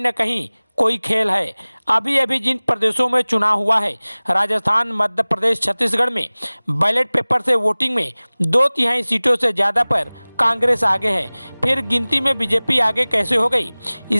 न कहीं कोई खेल है। अभी जिन प्रदेशों में चुनाव हुआ है, राजस्थान, मध्य प्रदेश, छत्तीसगढ़ में बैलेट पेपर से वोटिंग में 2/3 सीटों से ज़्यादा पर कांग्रेस आगे है। फिर गिनती में बीजेपी आगे कैसे हो गई?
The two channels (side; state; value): both; inverted; correlation -1.00